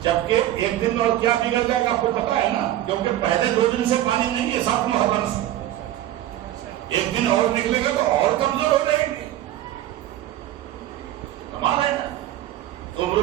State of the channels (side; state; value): left; quieter; 13.5 dB